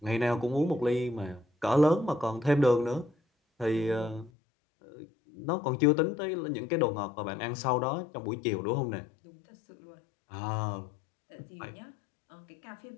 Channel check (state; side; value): drops out; right; at 4.3 s